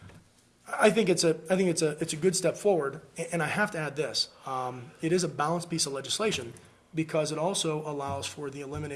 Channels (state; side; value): identical; both; correlation 1.00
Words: think it's a good step forward. And I have to add this: it is a balanced piece of legislation because it also allows for the